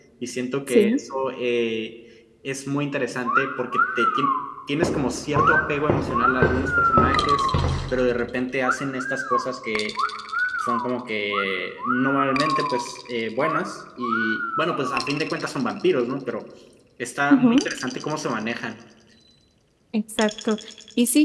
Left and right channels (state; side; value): identical; both; correlation 1.00